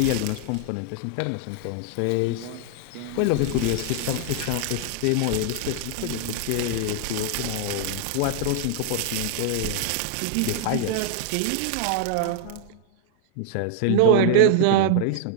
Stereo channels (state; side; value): different; both; correlation 0.00